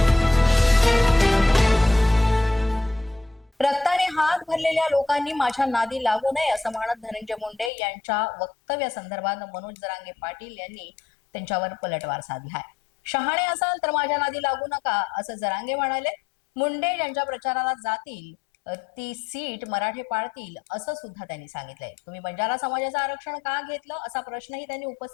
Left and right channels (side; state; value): right; drops out; at 7.7 s